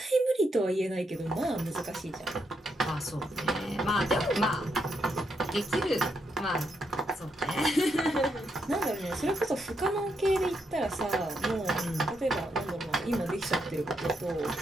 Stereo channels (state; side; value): normal; both; correlation 0.79